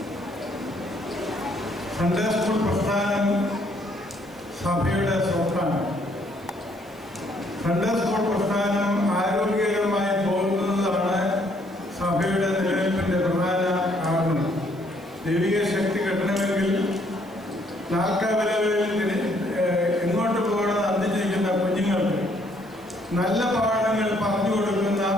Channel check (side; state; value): right; noise; hiss, 27 dB below the sound